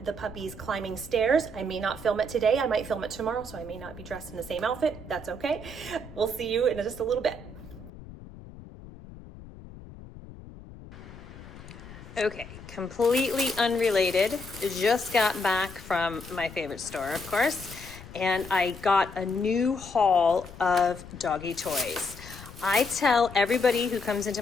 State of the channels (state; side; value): noise; left; rumble, 16 dB below the sound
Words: the puppies climbing stairs. I may not film it today. I might film it tomorrow, so I may not be dressed in the same outfit. That's okay. We'll see you in just a little bit. Okay, completely unrelated. Just got back from my favorite store, of course, and I got a new haul of doggy toys. I tell everybody who comes into